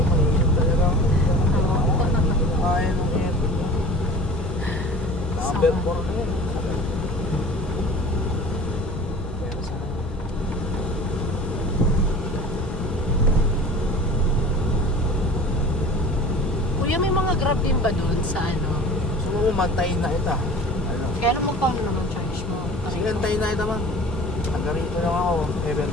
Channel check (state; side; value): normal; both; correlation 0.40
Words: mahirap talaga ako. Oo. Kaya ng aircon niya. Number 4 na yun. Pero sana. Kuya, may mga grab din ba doon sa ano? Gusto mo mantayin na ita. Ano? Kaya naman magkano naman charge mo? Sige, antayin na ita man. Taga rito lang ako,